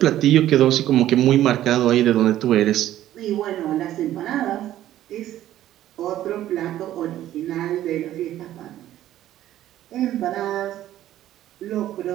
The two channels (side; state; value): left; quieter; 13.0 dB